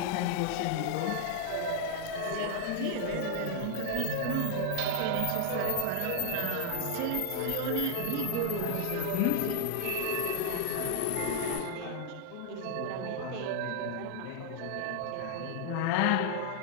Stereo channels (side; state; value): both; different; correlation 0.00